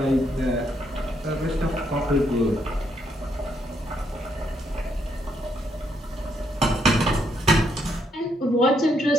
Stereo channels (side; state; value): both; normal; correlation 0.75